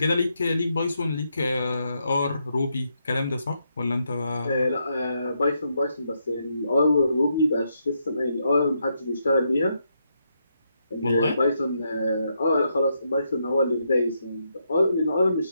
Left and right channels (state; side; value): inverted; both; correlation -0.80